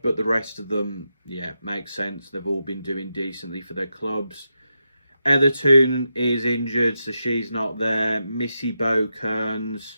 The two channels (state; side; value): inverted; both; correlation -0.87